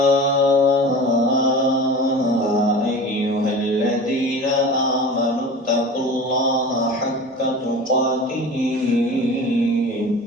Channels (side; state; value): both; normal; correlation 0.35